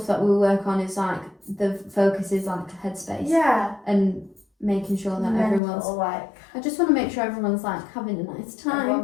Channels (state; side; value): drops out; right; at 5.6 s